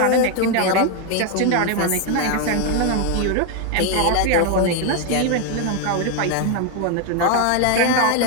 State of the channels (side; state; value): both; different; correlation 0.01